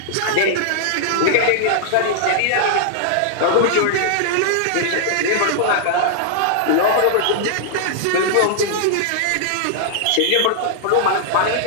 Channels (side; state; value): both; different; correlation -0.01